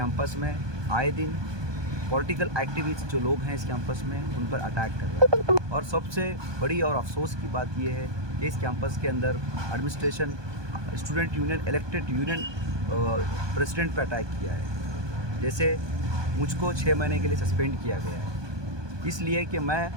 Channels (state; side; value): late; left; 1.2 ms